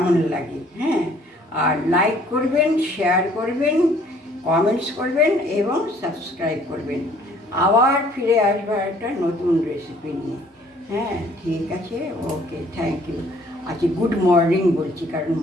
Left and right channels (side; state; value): both; normal; correlation 0.58